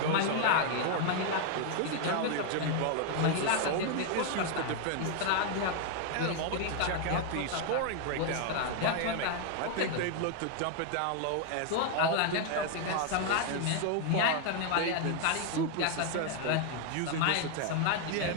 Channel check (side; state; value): both; different; correlation 0.00